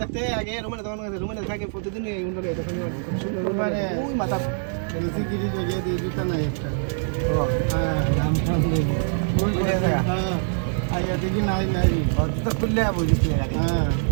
থাকতে আগে রুমেনে থাকে প্রতিদিন এই উন্ডলে তখন রুমেনে ওই মাথা বেশি গিরি জায়গায় দিয়ে দিতা না একটা হ্যাঁ দাম কম দেবো ওই হ্যাঁ আগে দেখি নাই জুতা খুললে বুঝিস হ্যাঁ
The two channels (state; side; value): silent; left; 63 dB below the other